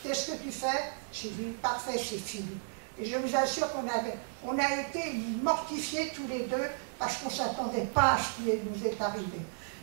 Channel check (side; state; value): left; silent; 55 dB below the other